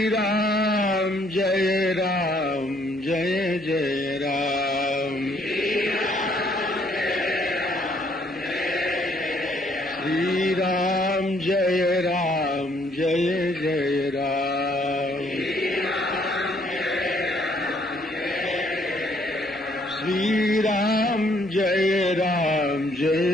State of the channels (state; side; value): normal; both; correlation 0.66